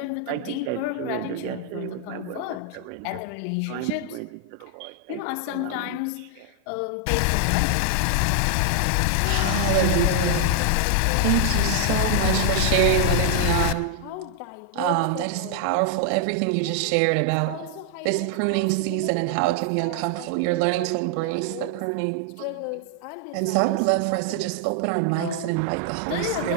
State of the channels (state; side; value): different; both; correlation 0.00